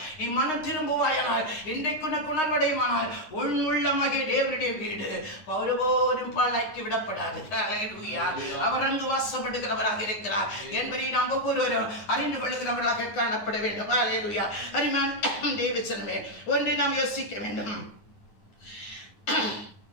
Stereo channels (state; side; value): late; right; 9.6 ms